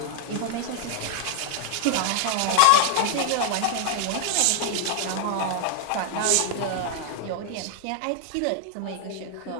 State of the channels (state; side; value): different; both; correlation 0.00